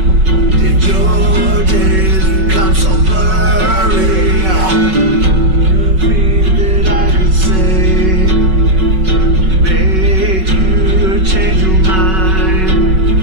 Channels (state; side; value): late; left; 5.3 ms